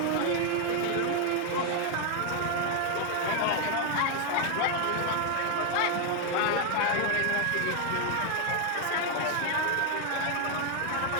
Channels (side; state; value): both; different; correlation 0.01